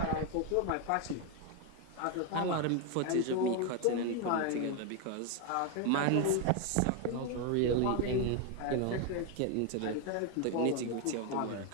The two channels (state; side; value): different; both; correlation 0.01